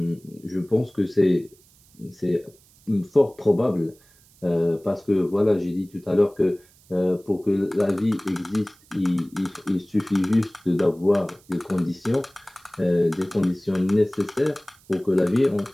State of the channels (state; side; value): noise; right; hiss, 29 dB below the sound